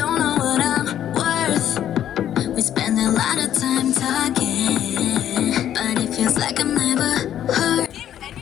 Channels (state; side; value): quieter; right; 10.8 dB